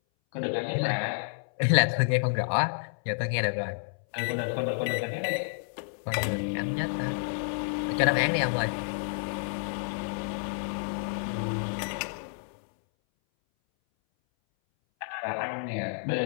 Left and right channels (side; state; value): right; silent; 58 dB below the other